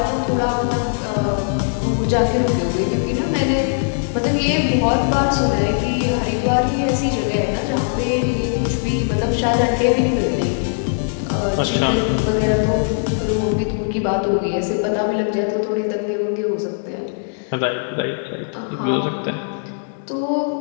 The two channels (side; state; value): right; silent; digital silence